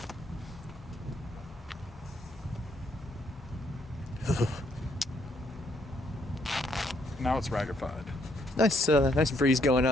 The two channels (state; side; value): normal; both; correlation 0.71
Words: Now it's ragified. Nice breeze going